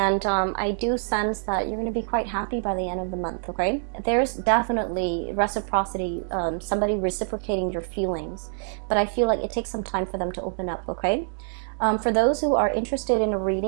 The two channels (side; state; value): left; silent; digital silence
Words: I do sense that you're going to be quite happy by the end of the month, okay? There's definitely reciprocity, somebody reciprocating your feelings. But I feel like it takes some time for them to open up, okay? For those who are interested in a